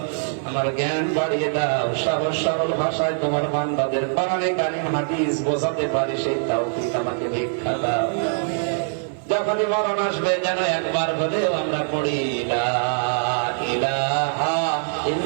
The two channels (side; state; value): left; silent; 56 dB below the other